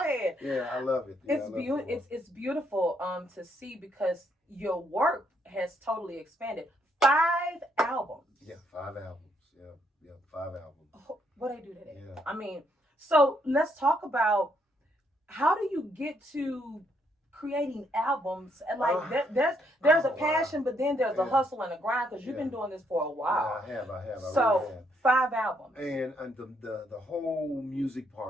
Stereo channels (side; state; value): both; normal; correlation 0.73